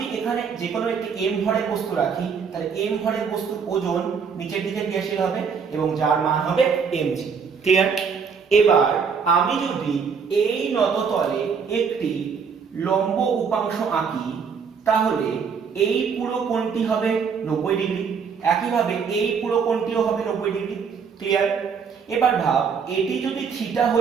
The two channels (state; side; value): quieter; left; 6.1 dB